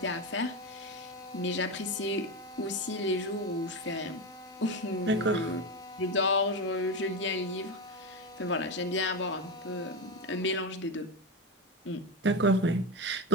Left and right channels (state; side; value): normal; both; correlation 0.16